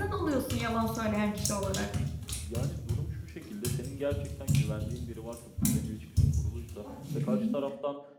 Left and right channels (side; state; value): both; identical; correlation 1.00